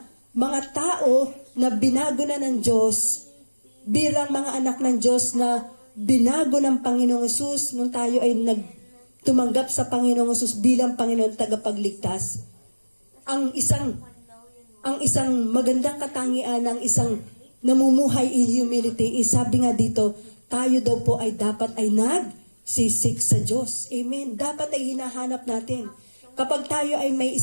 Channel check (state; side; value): inverted; both; correlation -1.00